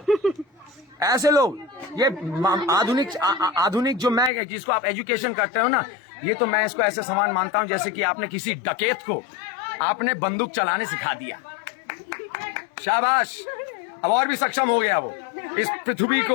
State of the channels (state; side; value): drops out; right; at 4.3 s